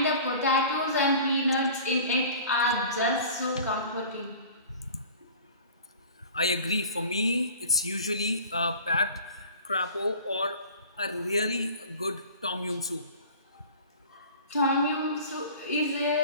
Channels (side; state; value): both; inverted; correlation -0.43